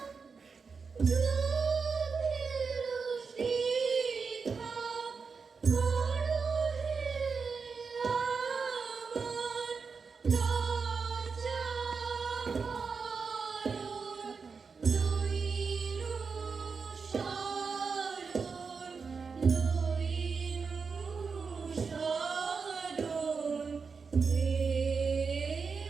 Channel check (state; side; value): quieter; left; 5.2 dB